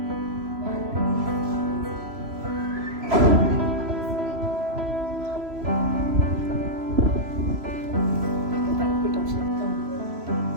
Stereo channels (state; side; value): late; left; 3.0 ms